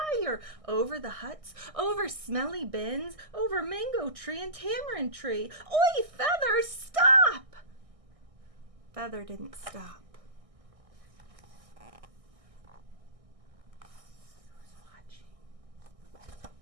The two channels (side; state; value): left; late; 1.6 ms